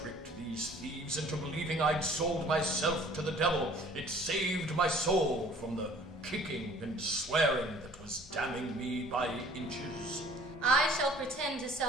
these thieves into believing I'd sold myself to the devil. It saved my soul from the kicking and swearing that was damning me by inches. I shall pretend to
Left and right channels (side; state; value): both; normal; correlation 0.52